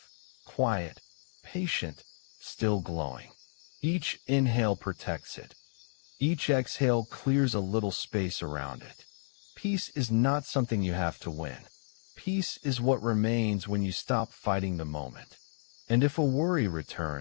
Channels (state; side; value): silent; right; digital silence